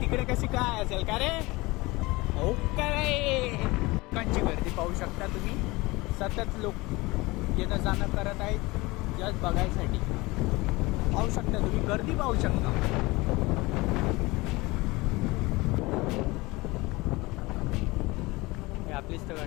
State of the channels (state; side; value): quieter; right; 22.4 dB